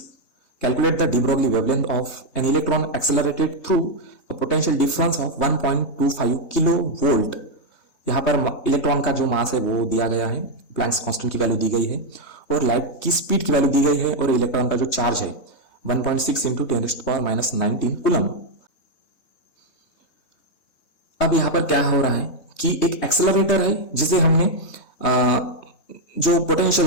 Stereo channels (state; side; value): late; right; 3.2 ms